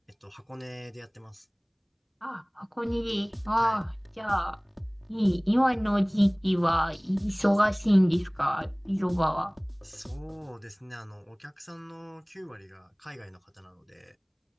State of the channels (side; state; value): both; identical; correlation 1.00